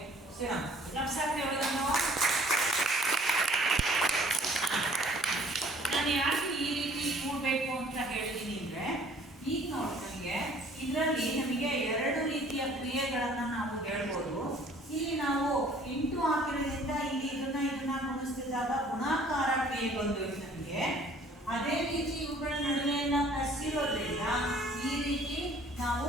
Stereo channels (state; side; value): normal; both; correlation 0.55